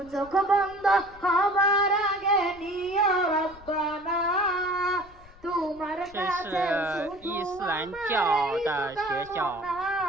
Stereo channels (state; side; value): noise; left; rumble, 23 dB below the sound